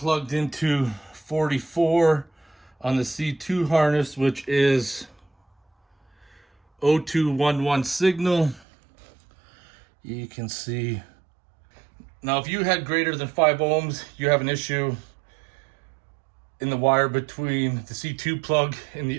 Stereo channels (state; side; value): drops out; left; at 8.7 s